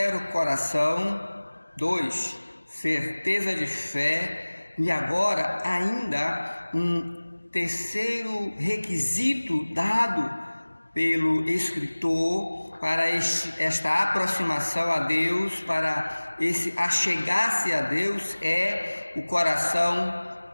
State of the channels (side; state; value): both; inverted; correlation -1.00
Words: coração. 2, certeza de fé. E agora ainda um terceiro requisito dado pelo escritor para esta aproximação a Deus, para esse achegar-se a Deus, é o coração